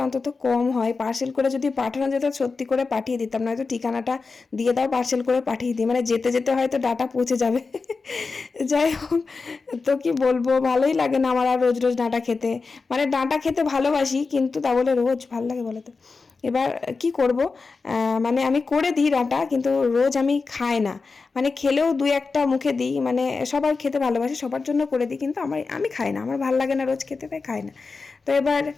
অন্তত কম হয়। পার্সেল করে যদি পাঠানো যেত সত্যি করে পাঠিয়ে দিতাম, নয়তো ঠিকানাটা দিয়ে দাও, পার্সেল করে পাঠিয়ে দিই, মানে যেতে যেতে হয়তো ডাঁটা পৌঁছে যাবে। যাই হোক, তো কি বলবো, ভালোই লাগে না আমার আর রোজ রোজ ডাঁটা খেতে। মানে ডাঁটা খেতে ভালোবাসি, কিন্তু তা বলে রোজ ভাল লাগে বলে তো? এবার কি করব, মানে আমি করে দিই ডাঁটা, কিন্তু রোজ আমি খাই না। মানে খেলেও দুই একটা মুখে দিই, মানে সবার খেতে ভালোবাসি, সবার জন্য করে দিই, কিন্তু আমি খাই না, আমার ভাল লাগে না রোজ খেতে, তাই খাই না। তো এবার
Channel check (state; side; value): quieter; right; 4.3 dB